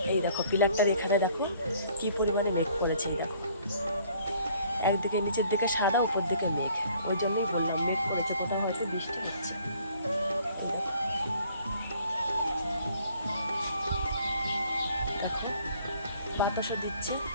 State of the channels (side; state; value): both; inverted; correlation -0.59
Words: এই দেখো পিলারটার এখানে দেখো কি পরিমাণে মেঘ করেছে। এই দেখো একদিকে নিচের দিকে সাদা, উপর দিকে মেঘ, ওই জন্যই বললাম মেঘ করেছে, কোথাও হয়তো বৃষ্টি হচ্ছে। দেখো বাতাসও দিচ্ছে।